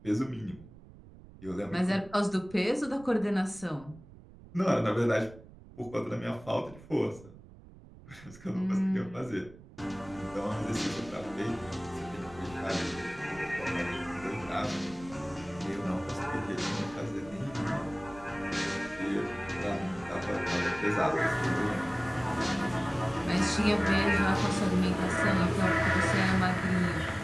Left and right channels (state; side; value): noise; right; rumble, 20 dB below the sound